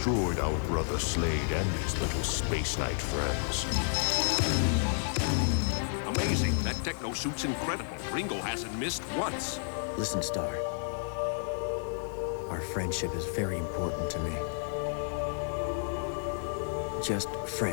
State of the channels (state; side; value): silent; right; digital silence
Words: our brother Slade and his little Space Knight friends. Amazing. That techno suit's incredible. Ringo hasn't missed once. Listen, Star. Our friendship is very important to me. Just